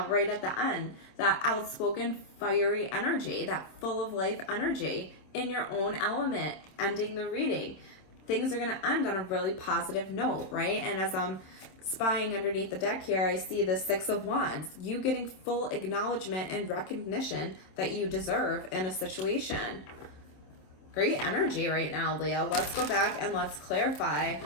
right at the end, that outspoken, fiery energy, that full of life energy in your own element, ending the reading. Things are going to end on a really positive note, right? And as I'm spying underneath the deck here, I see the Six of Wands, you getting full acknowledgement and recognition that you deserve in a situation. Great energy right now, Leo. Let's go back and let's clarify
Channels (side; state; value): right; late; 27 ms